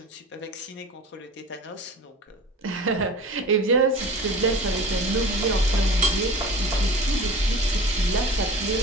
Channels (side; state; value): both; normal; correlation 0.39